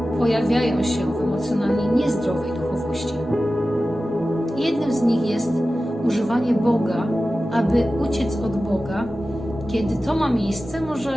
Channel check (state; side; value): normal; both; correlation 0.95